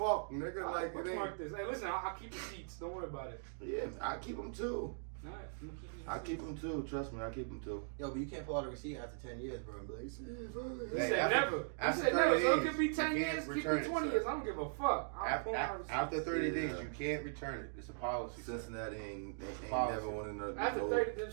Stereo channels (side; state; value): left; silent; digital silence